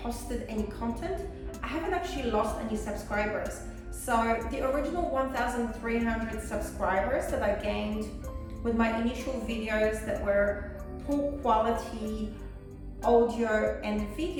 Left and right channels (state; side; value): identical; both; correlation 1.00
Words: any content, I haven't actually lost any subscribers. So the original 1,300 subscribers that I gained with my initial videos that were poor quality audio and